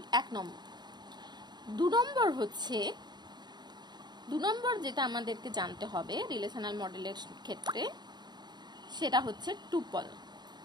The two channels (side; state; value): left; late; 0.21 ms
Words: 1 নম্বর। 2 নম্বর যেটা আমাদেরকে জানতে হবে রিলেশনাল মডেলের ক্ষেত্রে, সেটা হচ্ছে টুপল।